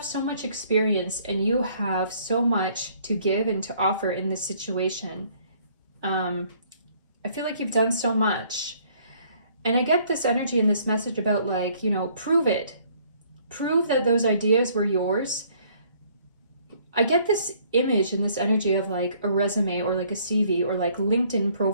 so much experience and you have so much to give and to offer in this situation. I feel like you've done so much. And I get this energy in this message about, like, you know, prove it. Prove that those ideas were yours. I get this image and this energy of like a resume or like a CV or like LinkedIn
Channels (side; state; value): both; inverted; correlation -0.61